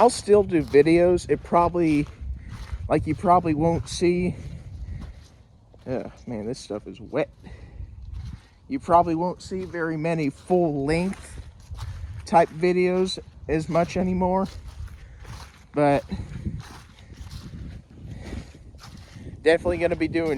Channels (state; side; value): identical; both; correlation 1.00